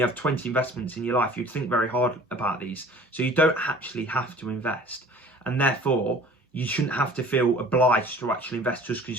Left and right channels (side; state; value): both; normal; correlation 0.47